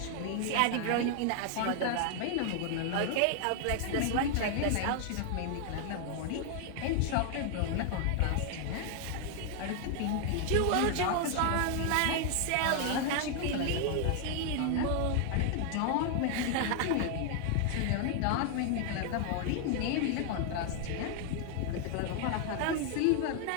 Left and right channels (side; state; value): both; different; correlation 0.00